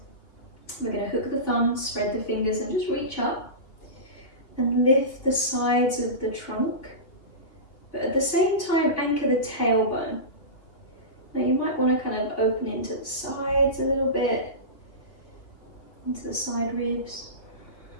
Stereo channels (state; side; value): late; right; 2.7 ms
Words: we're going to hook the thumb, spread the fingers, and just reach up and lift the sides of the trunk, but at the same time anchor the tailbone. Now you might want to kind of open into the sides a little bit, into the side ribs.